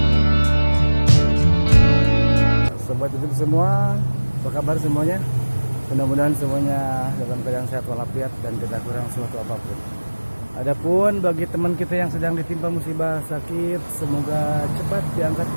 Sobat YouTube semua, apa kabar semuanya? Mudah-mudahan semuanya dalam keadaan sehat walafiat dan tidak kurang suatu apapun. Adapun bagi teman kita yang sedang ditimpa musibah sakit, semoga cepat diangkat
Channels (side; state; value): both; inverted; correlation -1.00